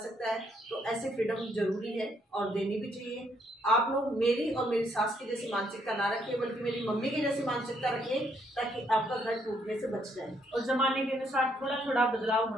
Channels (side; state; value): both; normal; correlation 0.71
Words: है, तो ऐसे फ्रीडम जरूरी है और देनी भी चाहिए। आप लोग मेरी और मेरी सास की जैसी मानसिकता ना रखिए, बल्कि मेरी मम्मी की जैसी मानसिकता रखिए, ताकि आपका घर टूटने से बच जाए। और जमाने के अनुसार थोड़ा थोड़ा बदलाव